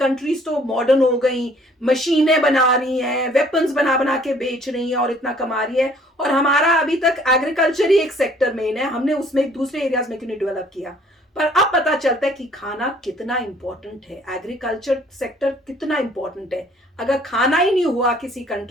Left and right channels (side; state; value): both; normal; correlation 0.58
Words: तो मॉडर्न हो गई, मशीनें बना रही हैं, वेपन्स बना बना के बेच रही हैं और इतना कमा रही है, और हमारा अभी तक एग्रीकल्चर ही एक सेक्टर मेन है, हमने उसमें दूसरे एरियाज में क्यों नहीं डेवलप किया। पर अब पता चलता है कि खाना कितना इंपॉर्टेंट है, एग्रीकल्चर सेक्टर कितना इंपॉर्टेंट है। अगर खाना ही नहीं हुआ किसी